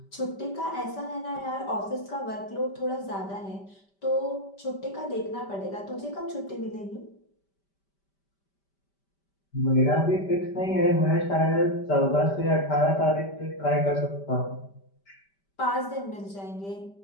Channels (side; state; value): right; late; 5.1 ms